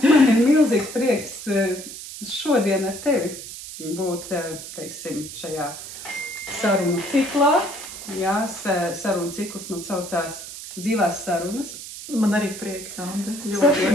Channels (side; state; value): right; noise; hiss, 11 dB below the sound